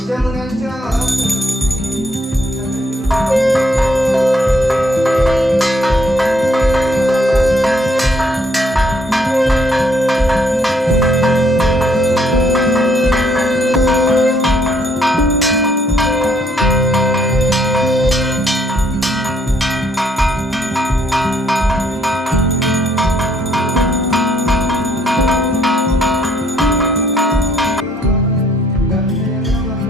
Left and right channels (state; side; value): normal; both; correlation 0.67